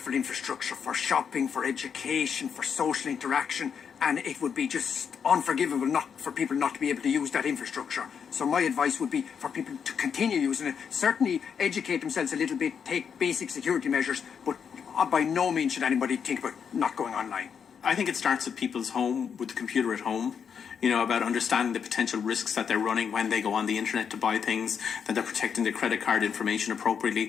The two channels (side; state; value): right; quieter; 7.1 dB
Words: infrastructure for shopping, for education, for social interaction, and it would be just unforgivable not for people not to be able to use that infrastructure. So my advice would be for people to continue using it, certainly educate themselves a little bit, take basic security measures, but by no means should anybody think about not going online. I think it starts at people's home, with the computer at home, about understanding the potential risks that they're running when they go on the internet to buy things, that they're protecting their credit card information